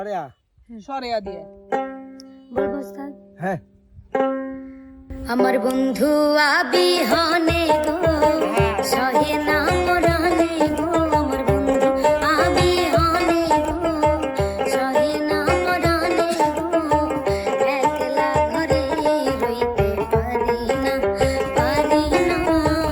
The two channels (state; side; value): identical; both; correlation 1.00